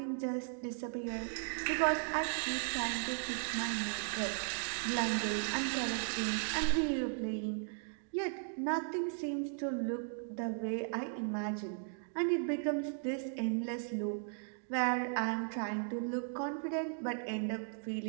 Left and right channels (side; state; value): left; silent; digital silence